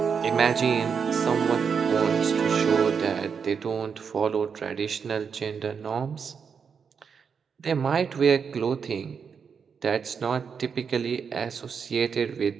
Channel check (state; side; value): quieter; left; 6.3 dB